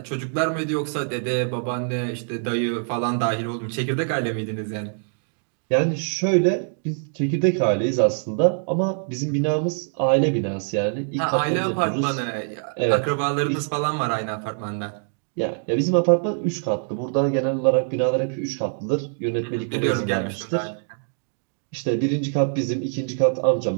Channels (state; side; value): silent; left; 62 dB below the other